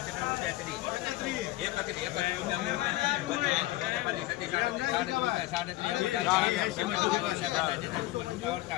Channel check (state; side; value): quieter; right; 17.5 dB